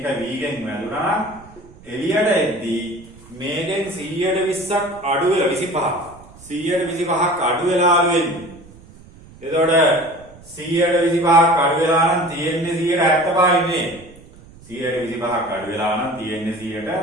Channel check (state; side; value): noise; right; rumble, 22 dB below the sound